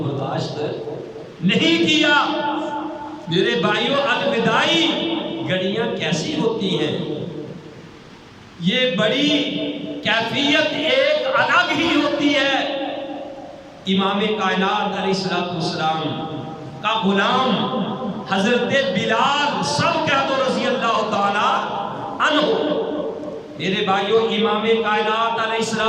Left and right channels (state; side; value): identical; both; correlation 1.00